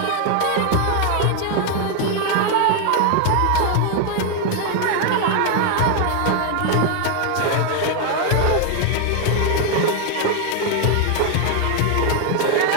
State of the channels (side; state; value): both; different; correlation 0.00